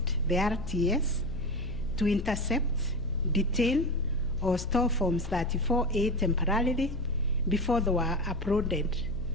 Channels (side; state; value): left; noise; hum, 8 dB below the sound